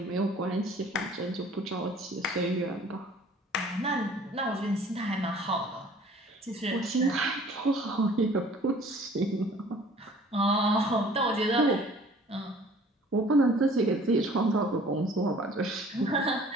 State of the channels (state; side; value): normal; both; correlation 0.51